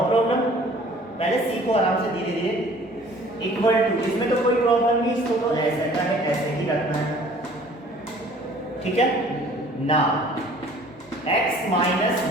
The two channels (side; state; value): both; normal; correlation 0.52